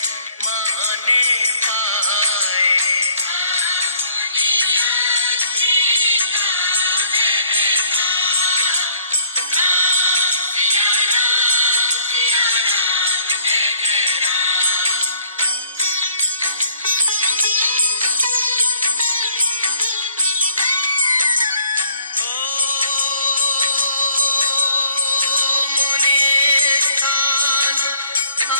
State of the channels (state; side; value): inverted; both; correlation -0.60